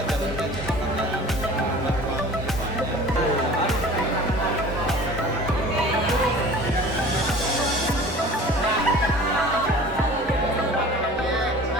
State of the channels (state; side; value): normal; both; correlation 0.44